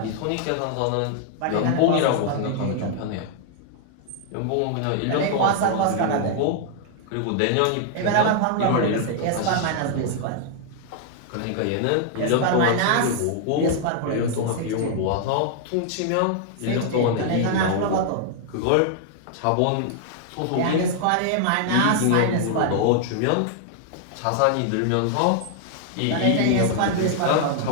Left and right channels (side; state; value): both; different; correlation 0.00